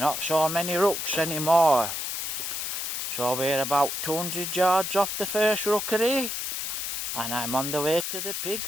so many rooks anymore. So we're about 200 yards off the first rookery and I'm on the way to the pig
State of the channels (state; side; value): noise; left; hiss, 3 dB below the sound